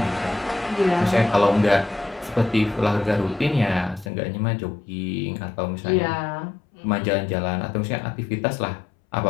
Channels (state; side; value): drops out; right; at 4.1 s